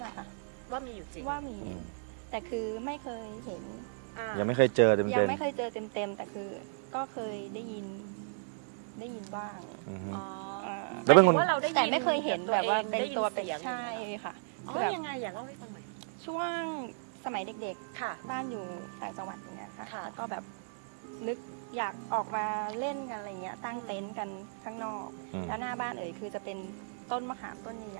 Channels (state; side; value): silent; left; digital silence